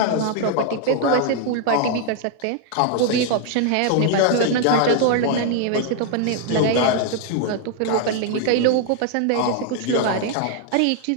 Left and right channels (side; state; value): both; different; correlation 0.00